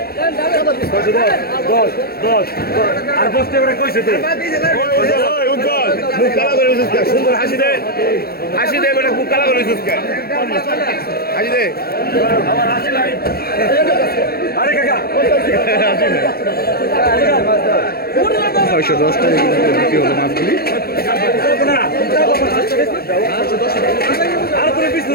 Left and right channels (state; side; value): late; right; 0.45 ms